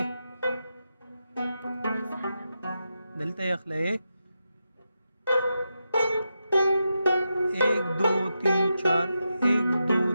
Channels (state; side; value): inverted; both; correlation -0.88